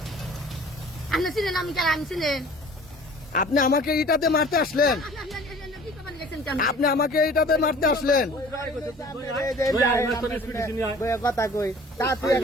আপনি চিনেন আমি কেন আমি চিনেন আপনি আমাকে ইটাতে মারতে আসলেন, আপনি আমাকে ইটাতে মারতে আসলেন, কথা কই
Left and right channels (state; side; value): normal; both; correlation 0.48